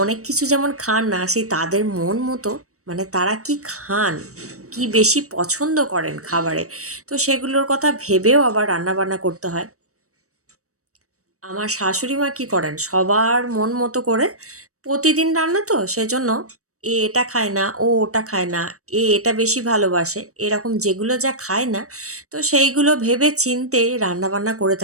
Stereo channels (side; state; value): left; late; 0.65 ms